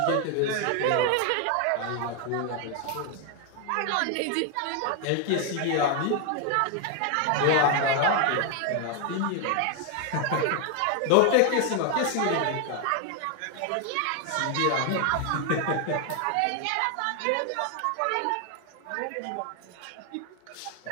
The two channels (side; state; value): both; different; correlation 0.01